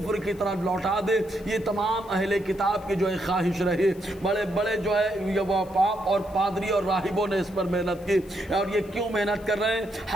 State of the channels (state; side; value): noise; left; hiss, 25 dB below the sound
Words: کی طرف لوٹا دے۔ یہ تمام اہل کتاب کی جو ہے خواہش رہی، بڑے بڑے جو ہے وہ پاپ اور پادری اور راہبوں نے اس پر محنت کی۔ اور یہ کیوں محنت کر رہے ہیں؟